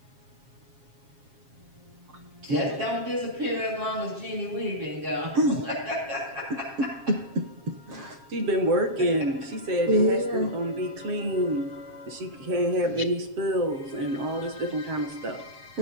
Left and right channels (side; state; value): left; late; 7.4 ms